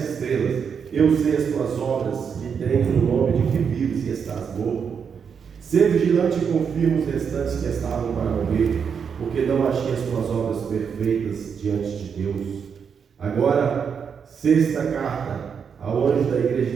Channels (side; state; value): left; quieter; 6.7 dB